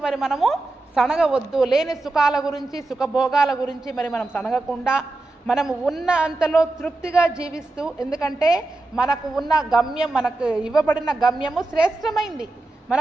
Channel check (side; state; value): left; quieter; 3.0 dB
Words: మరి మనము సనగవద్దు, లేని సుఖాల గురించి, సుఖభోగాల గురించి మరి మనం సనగకుండా మనము ఉన్న అంతలో తృప్తిగా జీవిస్తూ, ఎందుకంటే మనకు ఉన్న గమ్యం, మనకు ఇవ్వబడిన గమ్యము శ్రేష్టమైంది.